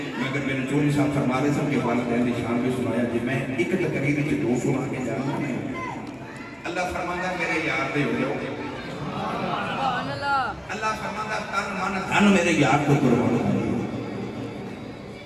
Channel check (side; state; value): both; identical; correlation 1.00